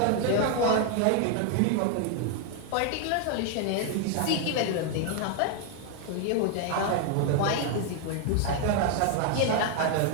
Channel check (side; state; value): both; different; correlation 0.01